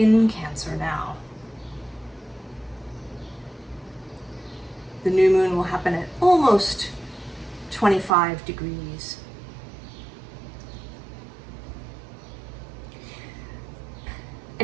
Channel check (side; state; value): left; drops out; at 8.1 s